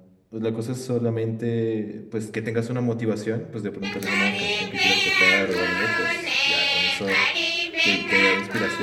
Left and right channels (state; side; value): identical; both; correlation 1.00